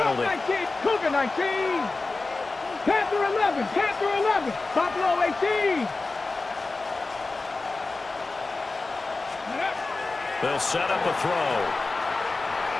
19, Cougar 19. Panther 11, Panther 11, Buffalo 18. They'll set up a throw.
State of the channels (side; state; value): right; quieter; 3.6 dB